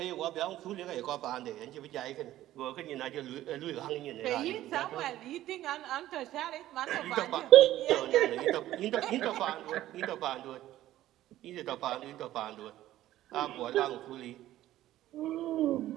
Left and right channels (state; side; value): quieter; left; 14.2 dB